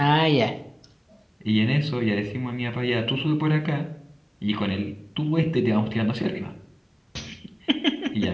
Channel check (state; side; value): identical; both; correlation 1.00